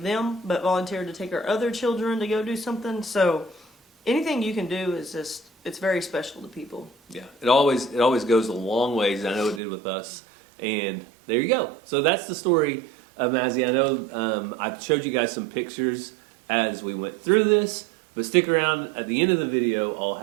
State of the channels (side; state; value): left; drops out; at 9.6 s